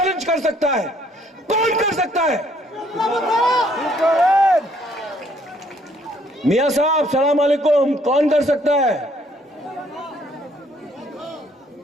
कर सकता है? कौन कर सकता है? मियां साहब सलाम अलैकुम, कौन कर सकता है?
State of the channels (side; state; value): both; normal; correlation 0.65